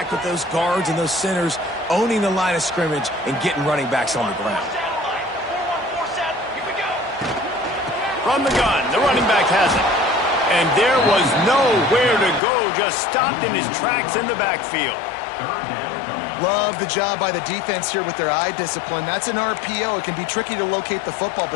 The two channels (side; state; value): right; drops out; at 12.4 s